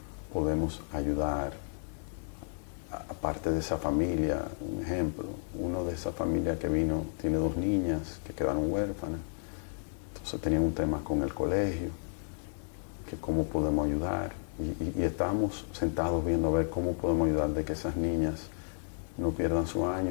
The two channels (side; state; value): right; silent; digital silence